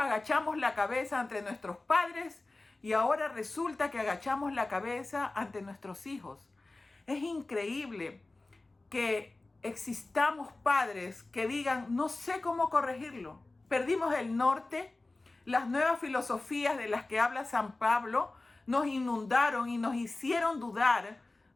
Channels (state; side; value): quieter; right; 3.1 dB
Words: la cabeza ante nuestros padres y ahora resulta que agachamos la cabeza ante nuestros hijos. Es increíble que existamos padres que digan, no sé cómo corregirlo. Perdimos el norte, las nuevas filosofías de las que habla San Pablo nos inundaron y nos hicieron dudar